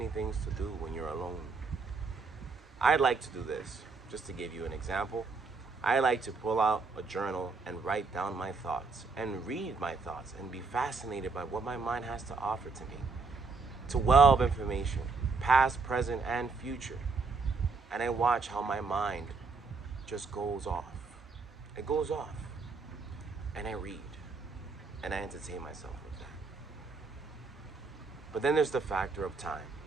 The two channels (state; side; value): quieter; left; 4.3 dB